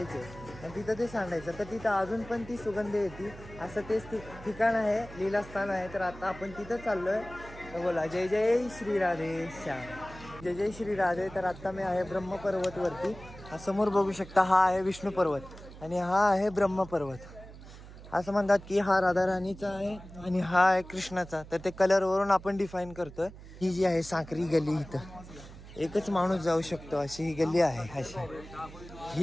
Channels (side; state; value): right; noise; hum, 16 dB below the sound